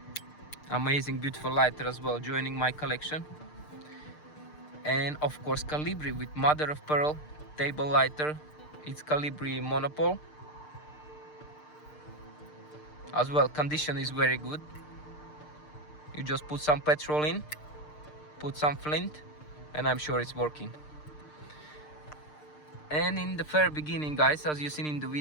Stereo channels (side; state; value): right; late; 6.6 ms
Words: Amazing, beautiful lighter as well, joining my collection. And of course Calibri with mother of pearl table lighter. It's Calibri Monopole. As well, condition is very good. You just put some petrol in, put some flint, and I'm sure it's working. And in the very beginning, guys, as you seen in the